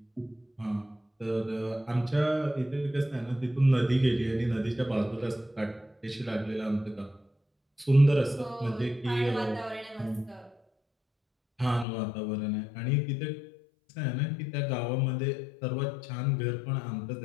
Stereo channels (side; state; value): right; drops out; at 11.9 s